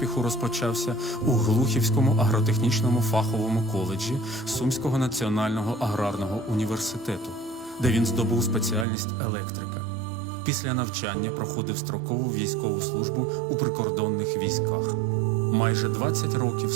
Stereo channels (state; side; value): drops out; left; at 8.8 s